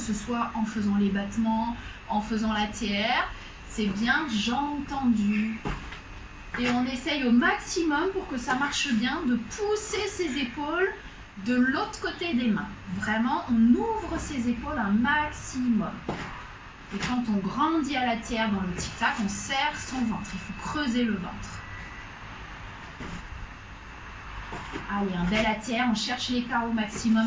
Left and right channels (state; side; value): identical; both; correlation 1.00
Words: soit en faisant les battements, en faisant l'ATR, c'est bien jambes tendues. Et on essaye au maximum pour que ça marche bien de pousser ses épaules de l'autre côté des mains. Vraiment, on ouvre ses épaules un maximum. Et quand on grandit à l'ATR dans le tic-tac, on serre son ventre. Il faut creuser le ventre. Allez, un bel ATR, on cherche l'écart au maximum